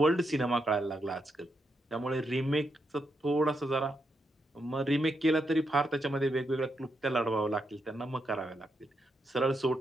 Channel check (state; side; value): normal; both; correlation 0.82